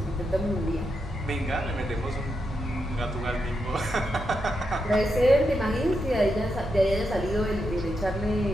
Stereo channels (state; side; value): normal; both; correlation 0.85